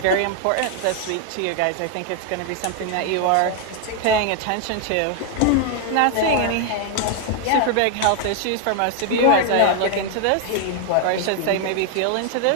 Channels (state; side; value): different; both; correlation 0.00